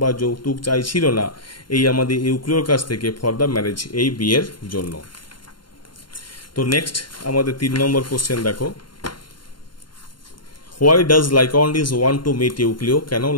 বা যৌতুক চাইছিল না এই আমাদের ইউক্লিওর কাছ থেকে ফর দ্য ম্যারেজ, এই বিয়ের জন্য। তো নেক্সট আমাদের 3 নম্বর কোশ্চেন দেখো, why does Lyconides want to meet Euclio? কেন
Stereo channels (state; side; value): late; right; 0.72 ms